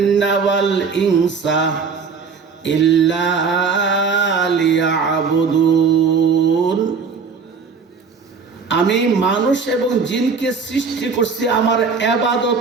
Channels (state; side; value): quieter; left; 5.4 dB